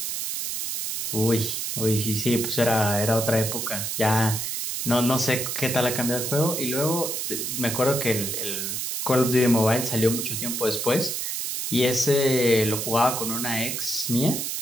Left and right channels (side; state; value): right; noise; hiss, 3 dB below the sound